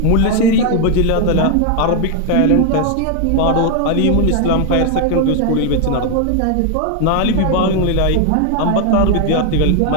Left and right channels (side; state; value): both; different; correlation 0.01